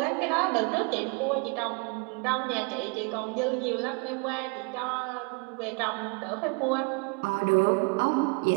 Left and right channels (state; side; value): quieter; left; 32.1 dB